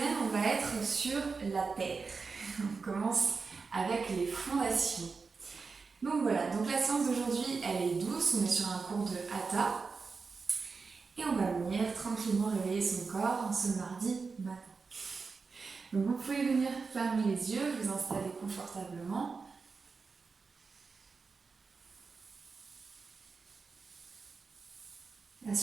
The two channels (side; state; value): left; quieter; 4.7 dB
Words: on va être sur la terre. On commence avec les fondations. Donc voilà, donc la séance d'aujourd'hui, elle est douce, on est sur un cours de Hatha. Et on va venir tranquillement réveiller son corps en ce mardi matin. Donc vous pouvez venir fermer les yeux, vous installer confortablement.